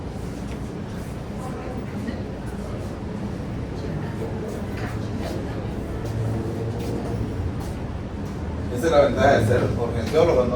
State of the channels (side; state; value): both; identical; correlation 1.00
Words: Esa es la ventaja de ser urgenciólogo,